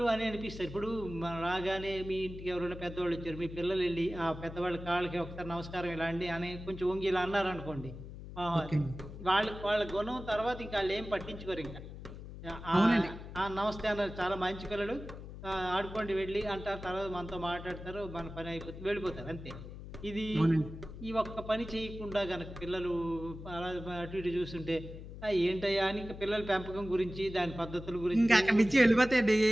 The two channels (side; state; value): left; noise; hum, 12 dB below the sound